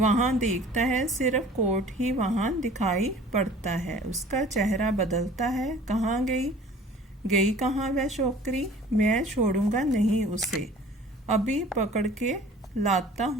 देखता है, सिर्फ कोट ही वहाँ दिखाई पड़ता है। उसका चेहरा बदलता है। कहाँ गई? गई कहाँ वह छोकरी? मैं छोड़ूंगा नहीं उसे, अभी पकड़ के लाता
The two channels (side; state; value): both; normal; correlation 0.47